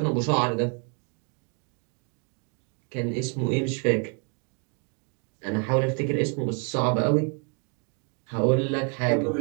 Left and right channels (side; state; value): left; quieter; 37.5 dB